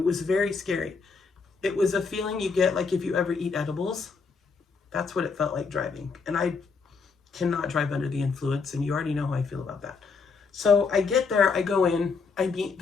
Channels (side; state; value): right; quieter; 4.9 dB